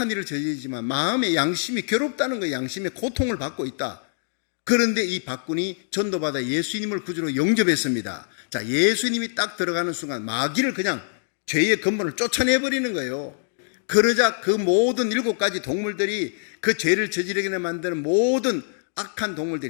일을 저지르지만 마음의 양심이 괴롭다는 거예요. 양심의 고통을 받고 있다. 그런데 이 박군이 전도받아 예수님을 구주로 영접했습니다. 자, 예수님이 딱 들어가는 순간 마귀를 그냥 죄의 근본을 쫓아내버리는 거예요. 그러자 그 모든 7가지 동물들이 그 죄를 저지르게 만드는 모든 악한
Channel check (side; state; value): right; silent; digital silence